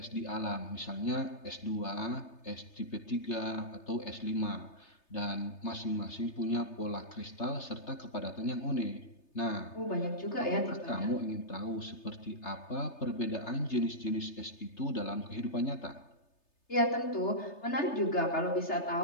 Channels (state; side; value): late; right; 3.3 ms